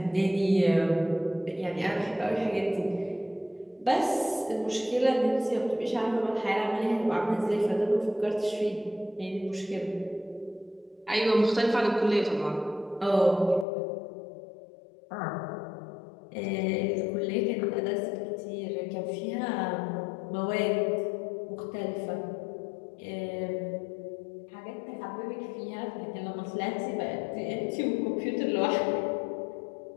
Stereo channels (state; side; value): drops out; right; at 13.7 s